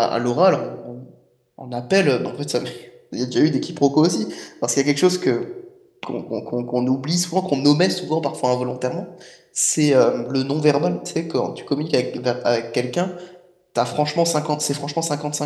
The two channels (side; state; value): both; identical; correlation 1.00